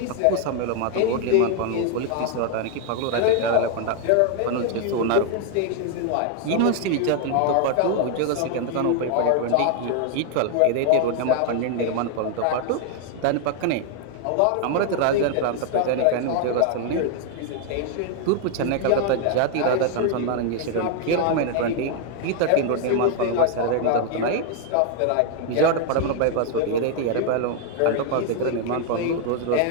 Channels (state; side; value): different; both; correlation 0.00